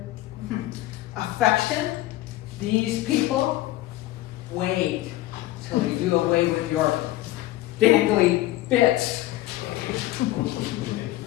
Affection? These people? Wait till you do away with your dangly bits.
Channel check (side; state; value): right; quieter; 16.1 dB